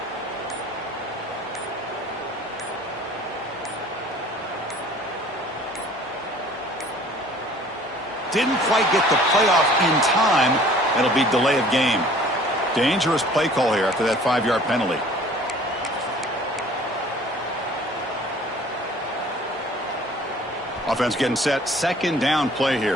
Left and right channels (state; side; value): normal; both; correlation 0.51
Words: Didn't quite get the playoff in time. That'll be delay of game. Dangerous play call here after that 5-yard penalty. Offense getting set. Second down play